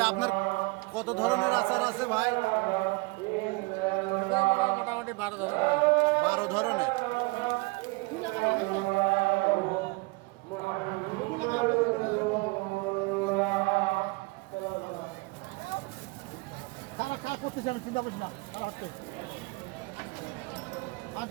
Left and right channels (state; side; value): quieter; left; 26.1 dB